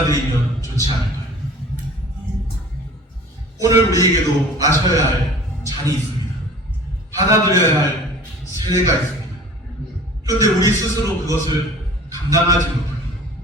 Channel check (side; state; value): both; normal; correlation 0.45